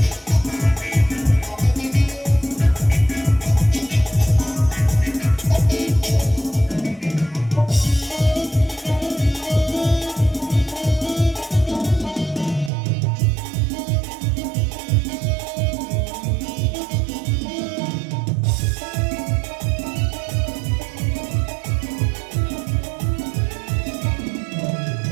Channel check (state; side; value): drops out; left; at 12.7 s